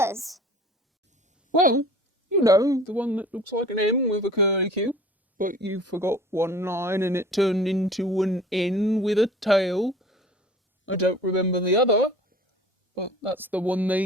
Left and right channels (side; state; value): both; normal; correlation 0.45